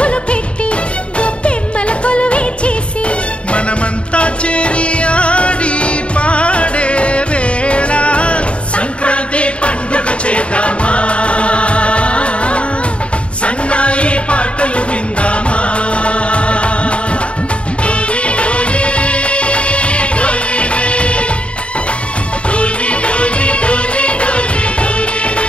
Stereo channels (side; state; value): right; late; 0.059 ms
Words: పెట్టి గొప్పెమ్మల కొలువే చేసి మనమంతా చేరి ఆడి పాడే వేళ సంక్రాంతి పండుగ చేద్దామా సన్నాయి పాటలు విందామా డోలి డోలి డోలి రే డోలి డోలి డోలి డోలి డోలి